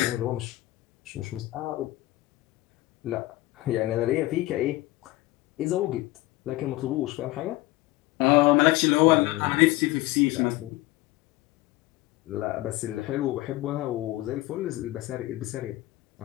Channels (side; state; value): right; quieter; 18.6 dB